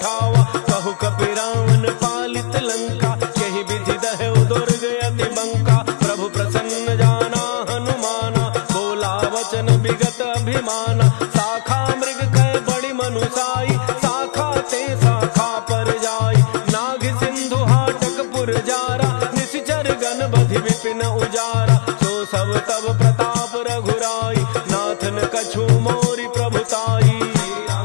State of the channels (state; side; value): silent; right; digital silence